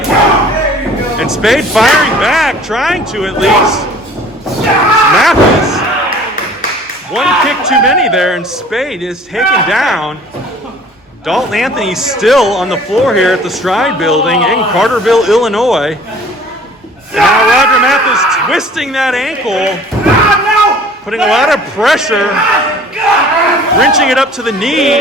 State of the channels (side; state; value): both; normal; correlation 0.49